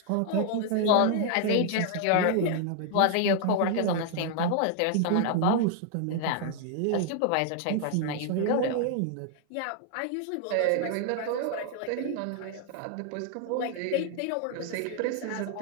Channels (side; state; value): both; different; correlation 0.00